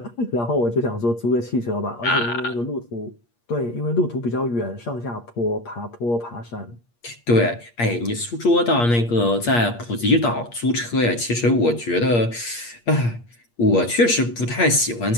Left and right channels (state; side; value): late; right; 8.5 ms